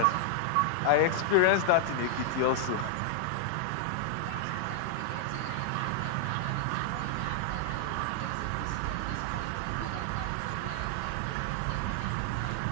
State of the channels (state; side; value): different; both; correlation 0.00